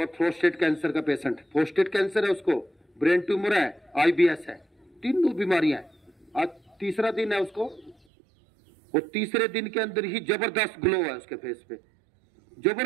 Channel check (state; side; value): drops out; left; at 8.0 s